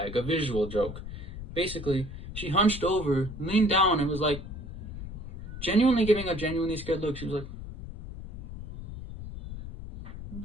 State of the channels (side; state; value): left; noise; rumble, 10 dB below the sound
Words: a visual joke. Basically, she hunched over, leaned down, and was like, genuinely giving a genuinely scared look. She was